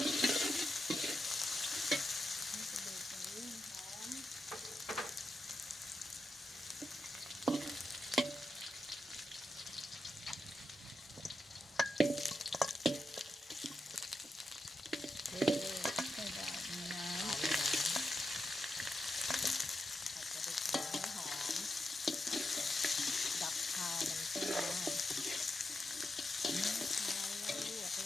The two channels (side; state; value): both; normal; correlation 0.87